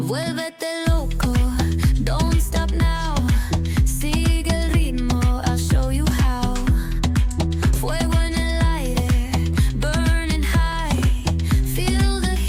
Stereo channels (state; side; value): identical; both; correlation 1.00